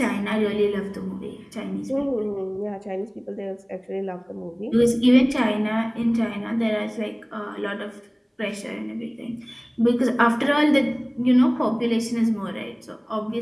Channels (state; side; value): identical; both; correlation 1.00